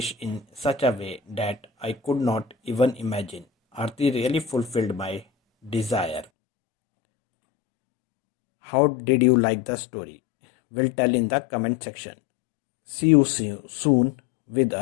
in such a way that I could not even imagine. Aarti really fulfilled my desire. How did you like the story? Will tell in the comment section. See you soon with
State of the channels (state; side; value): drops out; right; at 6.2 s